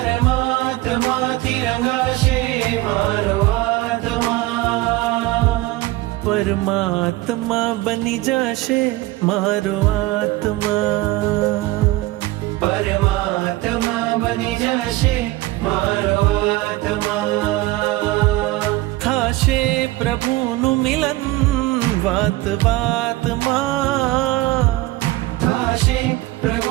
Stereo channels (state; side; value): quieter; left; 17.9 dB